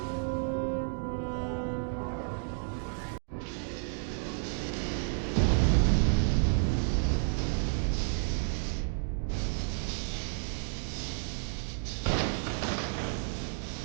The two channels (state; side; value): silent; left; 57 dB below the other